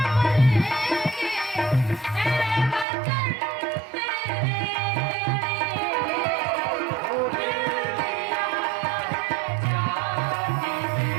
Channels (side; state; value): left; drops out; at 2.9 s